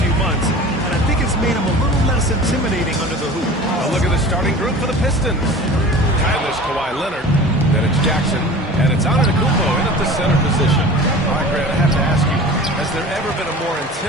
months, and I think it's made him a little less intimidating under the hoop. A look at the starting group for the Pistons. Tyler's Kawhi Leonard, then it's Jackson, and it's Antetokounmpo in at the center position. All right, Grant, I have to ask you, has there ever been a more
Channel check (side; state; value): both; normal; correlation 0.39